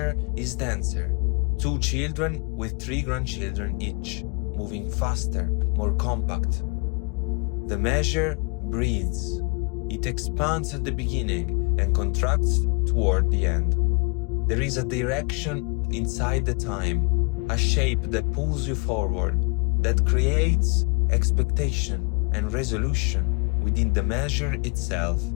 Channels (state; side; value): quieter; right; 33.2 dB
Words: is denser, 2 children with 3 grandchildren each, moving faster, more compact. The measure breathes. It expands at the beginning and contracts toward the end. There is a direction inside the time, a shape that pulls you forward, that creates expectation and resolution within the measure itself,